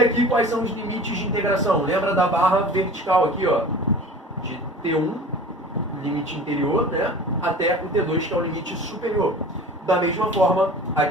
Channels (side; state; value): both; normal; correlation 0.40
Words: aqui quais são os limites de integração? Lembra da barra vertical aqui, ó, de T1, limite interior, né, até o T2, que é o limite superior. Da mesma forma,